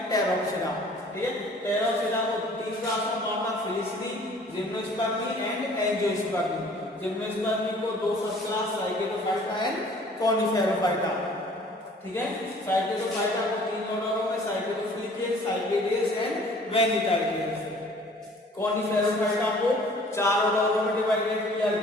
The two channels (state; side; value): normal; both; correlation 0.52